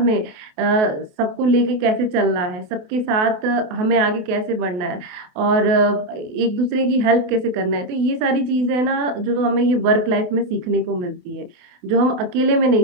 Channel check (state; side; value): late; left; 28 ms